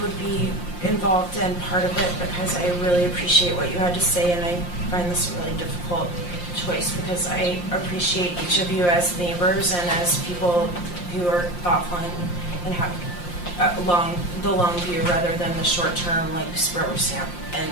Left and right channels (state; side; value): late; right; 5.7 ms